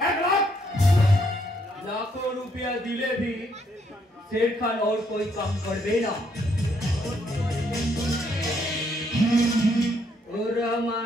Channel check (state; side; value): normal; both; correlation 0.72